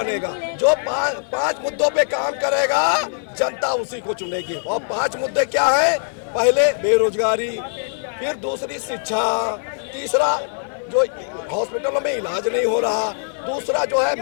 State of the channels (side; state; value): right; silent; digital silence